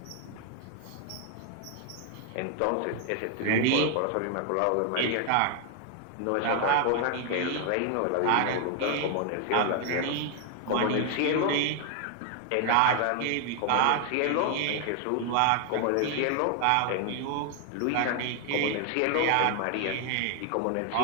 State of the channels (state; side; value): different; both; correlation 0.00